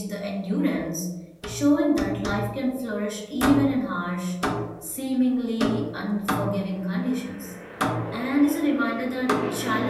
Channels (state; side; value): identical; both; correlation 1.00